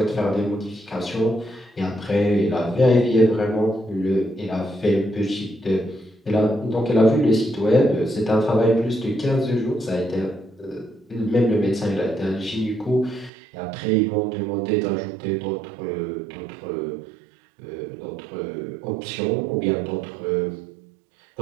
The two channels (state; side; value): drops out; left; at 13.3 s